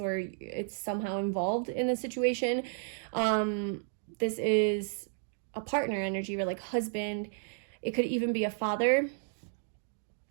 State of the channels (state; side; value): silent; left; digital silence